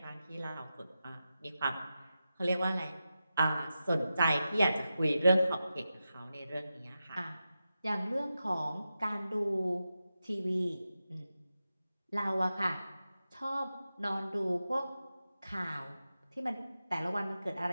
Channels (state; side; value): inverted; both; correlation -0.91